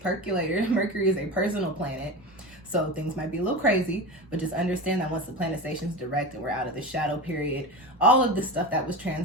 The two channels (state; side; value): normal; both; correlation 0.25